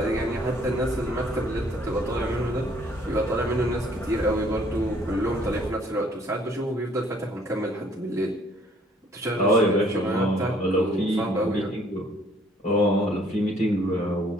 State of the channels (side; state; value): both; normal; correlation 0.61